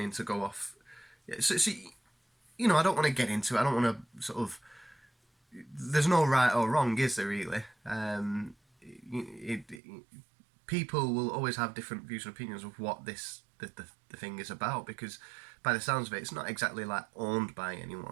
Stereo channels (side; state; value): left; drops out; at 9.8 s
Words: to go off. So you know, I don't want to get into it. I don't want to sort of. There's no right or wrong, is there really? People will always have different views and opinions of what the thing is about, because by the sounds of it, it's not exactly like owned by